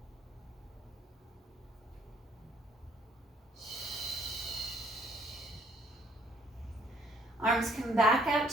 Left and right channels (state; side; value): normal; both; correlation 0.64